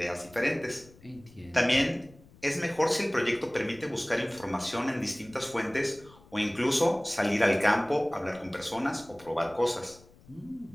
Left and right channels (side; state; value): left; noise; rumble, 24 dB below the sound